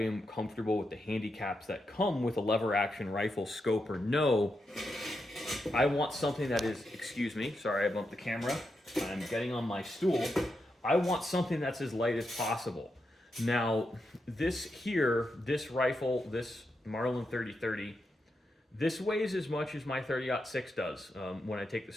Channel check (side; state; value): both; normal; correlation 0.85